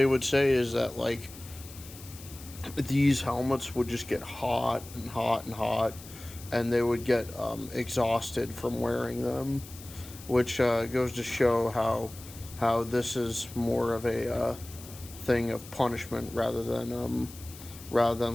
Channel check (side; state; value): left; noise; hiss, 17 dB below the sound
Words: would say is that, like, these helmets would just get hot and hot and hot, and they would get exhausted from wearing them, which goes to show how this is more of a thing of punishment rather than